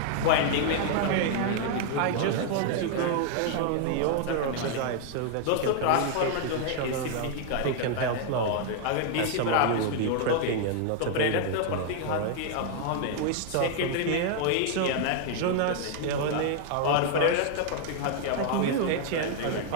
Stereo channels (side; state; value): both; different; correlation 0.00